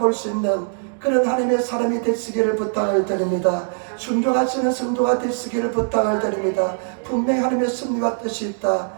수 있는 그런 하나님의 사람이 되시기를 부탁을 드립니다. 순종하시는 성도가 되시기를 부탁을 드립니다. 분명히 하나님의 섭리와 뜻이 있다,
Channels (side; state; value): left; silent; digital silence